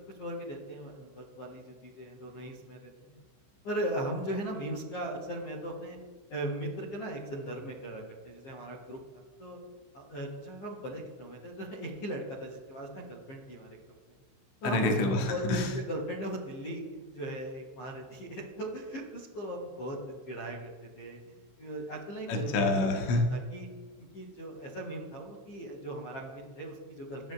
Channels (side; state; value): right; late; 16 ms